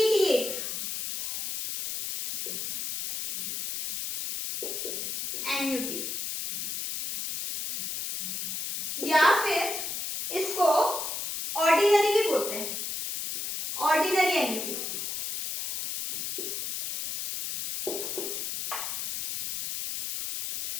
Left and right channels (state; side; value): noise; left; hiss, 4 dB below the sound